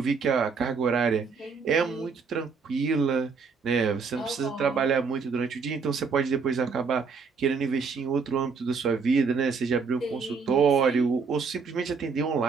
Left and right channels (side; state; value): left; quieter; 5.2 dB